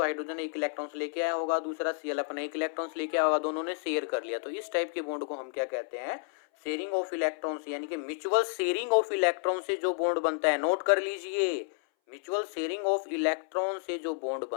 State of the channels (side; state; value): right; silent; 57 dB below the other